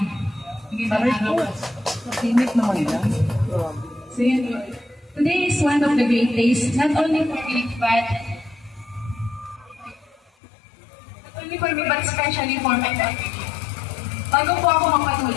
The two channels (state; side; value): drops out; right; at 10.2 s